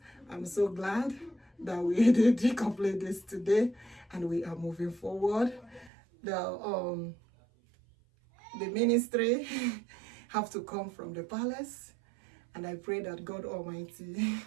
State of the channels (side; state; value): left; drops out; at 5.9 s